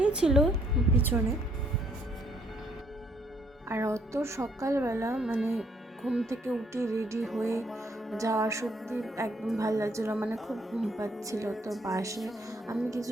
ছিল পিছনে। আর অত সকালবেলা মানে ঘুম থেকে উঠে রেডি হয়ে যাওয়া সত্যি একদম ভালো লাগছিলো, মানে খুব ঘুম পাচ্ছিল। তো বাসে আমি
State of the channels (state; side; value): normal; both; correlation 0.68